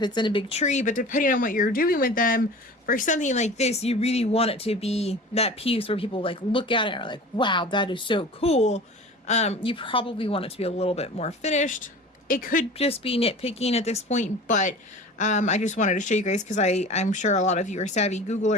it's in a big tree, but depending on what you're doing with them, for something like this, you really want it to be that piece where people like look at it and are like, wow, that is so cool. You probably want it to be a little bit more finished. It could just be nitpicking at this point, but I just wanted to show you guys because I'm sure a lot of you are savvy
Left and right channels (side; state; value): both; normal; correlation 0.38